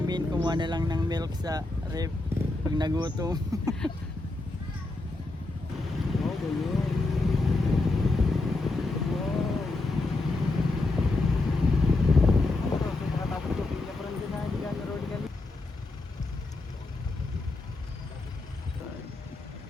kumuha na lang ng milk sa ref pag nagutom. Oh, ganyan. Wow. So, makatapos ko pinya parang dyan na, hindi ka na rolling gali.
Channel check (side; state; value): right; quieter; 3.1 dB